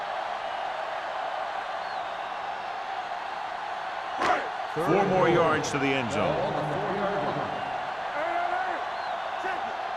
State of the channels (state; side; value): identical; both; correlation 1.00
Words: Four more yards to the end zone. Hey, check it.